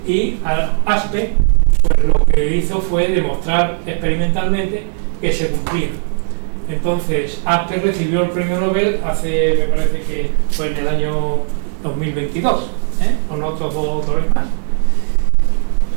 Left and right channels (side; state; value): left; silent; digital silence